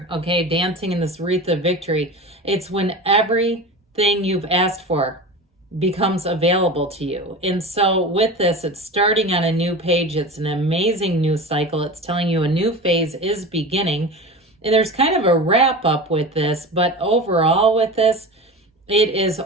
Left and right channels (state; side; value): normal; both; correlation 0.30